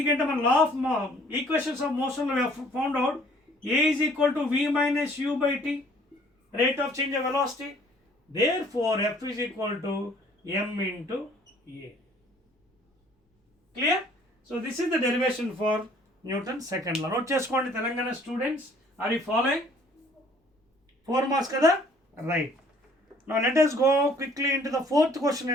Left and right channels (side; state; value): both; normal; correlation 0.57